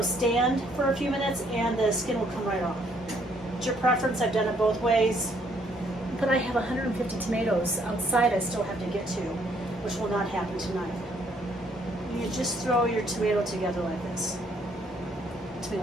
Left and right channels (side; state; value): both; normal; correlation 0.67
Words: stand for a few minutes, and the skin will come right off. It's your preference. I've done it both ways. But I have 150 tomatoes outside I still have to get to, which will not happen tonight. You just throw your tomato together like this.